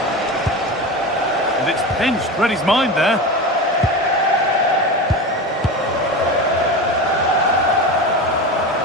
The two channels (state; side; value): normal; both; correlation 0.25